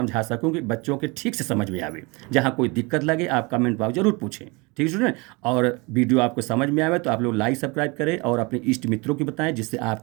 सकूं कि बच्चों के ठीक से समझ में आवे। जहाँ कोई दिक्कत लगे आप कमेंट बॉक्स जरूर पूछें, ठीक है स्टूडेंट। और वीडियो आपको समझ में आवे तो आप लोग लाइक सब्सक्राइब करें और अपने इष्ट मित्रों को बताएं, जिससे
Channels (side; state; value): left; quieter; 27.0 dB